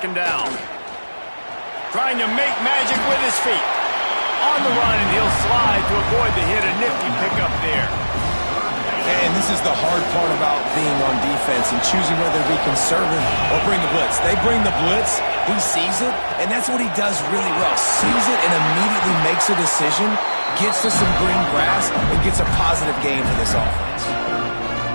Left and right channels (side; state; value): both; inverted; correlation -1.00